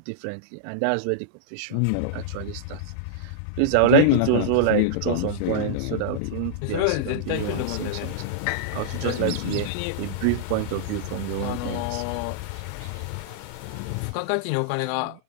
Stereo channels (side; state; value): both; different; correlation -0.02